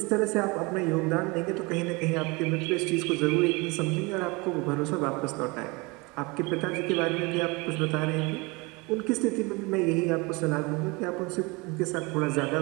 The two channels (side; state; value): left; quieter; 26.3 dB